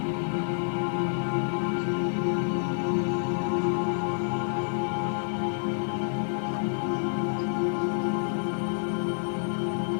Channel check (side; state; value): right; silent; 59 dB below the other